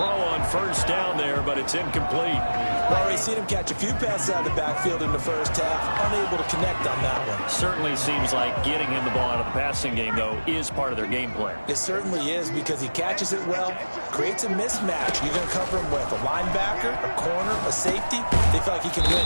on first down there, but it's incomplete. We've already seen him catch a few passes out of the backfield in the first half, unable to connect on that one. Certainly seems like getting him the ball out of the passing game, though, is part of their game plan. It certainly is, because he catches it well, creates a mismatch. You're going to cover him with a linebacker, a corner, a safety. They feel like he can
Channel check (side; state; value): both; inverted; correlation -1.00